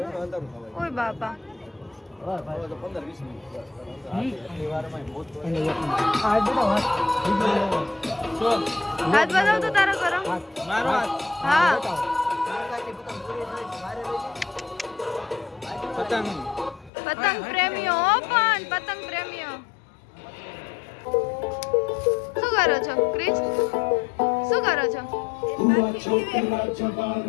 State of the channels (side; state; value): right; drops out; at 16.9 s